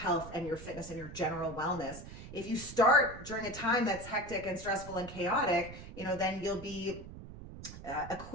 health and your fitness and your general wellness. If you start during a time that's hectic and stressful and chaotic, then you'll be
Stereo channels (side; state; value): right; noise; rumble, 13 dB below the sound